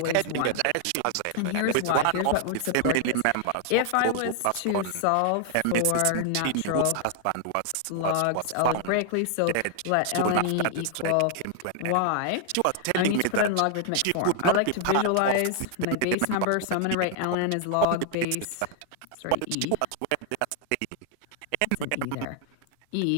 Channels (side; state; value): both; different; correlation 0.00